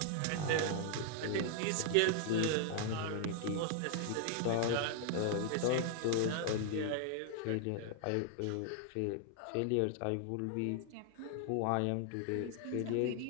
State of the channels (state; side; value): different; both; correlation 0.00